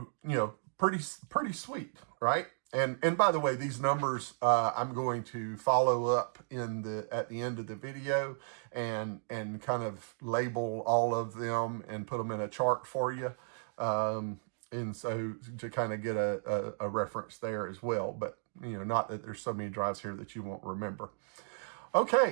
you know, pretty sweet, right? And by the way, these numbers I'm going to follow up at the end of the video and kind of label all of them and put them in a chart for you. And so to kind of get a reference there as well. But, you know, not that there's so many drives here that you won't remember.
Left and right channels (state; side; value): silent; left; digital silence